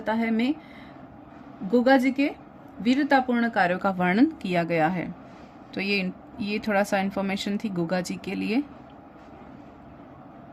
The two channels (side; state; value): both; identical; correlation 1.00